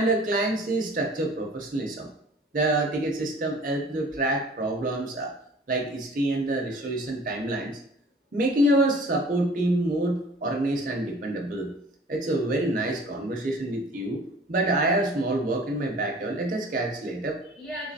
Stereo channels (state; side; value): normal; both; correlation 0.48